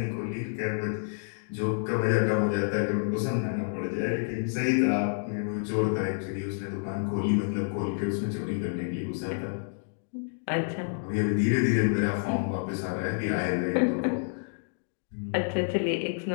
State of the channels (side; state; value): right; silent; digital silence